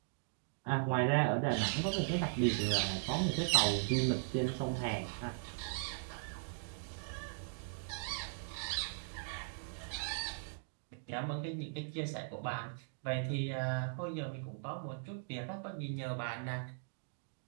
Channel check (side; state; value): left; silent; digital silence